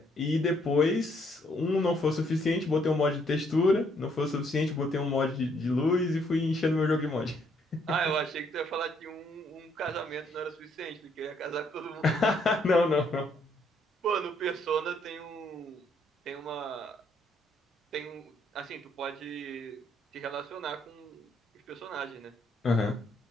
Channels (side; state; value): both; normal; correlation 0.69